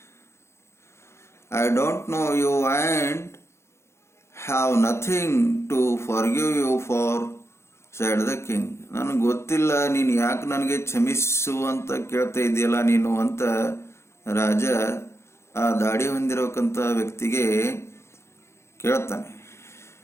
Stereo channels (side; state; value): right; late; 0.13 ms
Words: I don't know you and have nothing to forgive you for, said the king. ನನಗೆ ಗೊತ್ತಿಲ್ಲ, ನೀನು ಯಾಕೆ ನನಗೆ ಕ್ಷಮಿಸು ಅಂತ ಕೇಳ್ತಾ ಇದೆಯಲ್ಲ ನೀನು ಅಂತ ರಾಜ ಆ ದಾಡಿ ಹೊಂದಿರಬೇಕಂತ ವ್ಯಕ್ತಿಗೆ ಕೇಳ್ತಾನೆ.